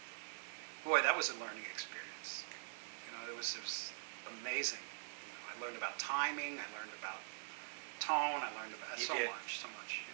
boy, that was a learning experience. You know, it was amazing. You know, I learned about timing, I learned about tone, I learned about You so did. much, so much. You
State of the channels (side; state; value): left; silent; digital silence